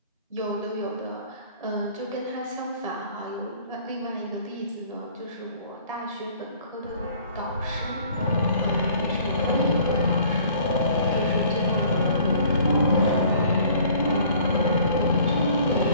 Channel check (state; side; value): inverted; both; correlation -0.54